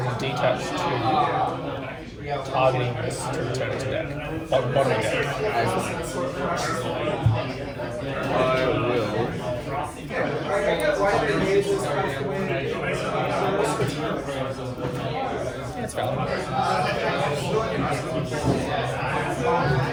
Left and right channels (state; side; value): identical; both; correlation 1.00